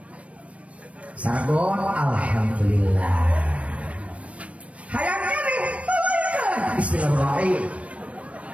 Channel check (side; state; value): left; late; 0.064 ms